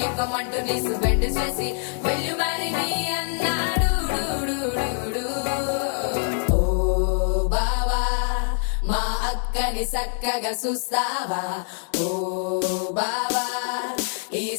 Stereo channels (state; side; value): silent; right; 62 dB below the other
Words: నీసు బెండ్ చేసి వెళ్ళు మరి నీ అన్నాడు ఓ బావా మా అక్కని చక్కగా చూస్తావా ఓ బావా ఈ